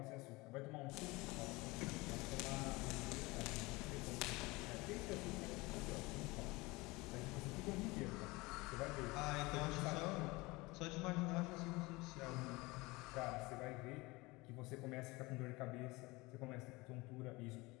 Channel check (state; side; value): quieter; right; 23.0 dB